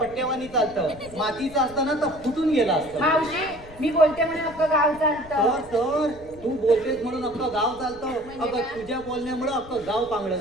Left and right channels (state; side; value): noise; left; rumble, 20 dB below the sound